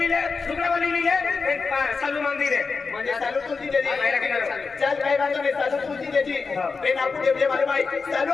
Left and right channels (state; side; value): quieter; right; 4.7 dB